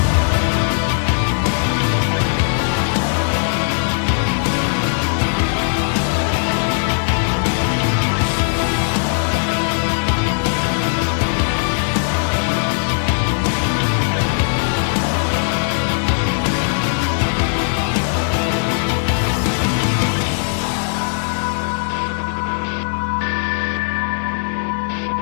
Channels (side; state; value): right; silent; digital silence